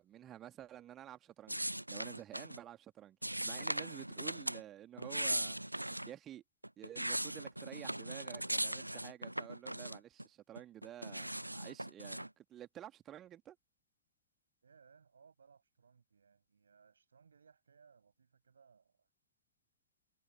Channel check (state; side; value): inverted; both; correlation -0.88